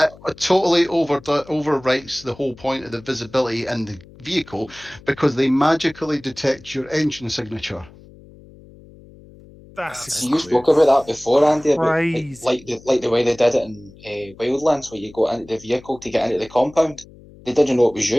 It totally overwrites the whole point of the visibility in the vehicle because they magically detect your engine signature. that's That's See, you fun. spoke about that before, Andy, about crazy. the way they did it in Wildlands, where you go into the vehicle to get into the compound. They didn't know it was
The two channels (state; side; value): noise; left; hum, 22 dB below the sound